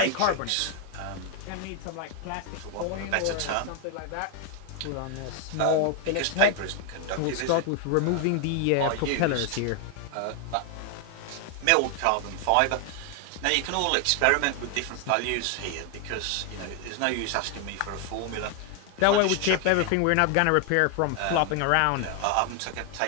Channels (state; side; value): different; both; correlation 0.00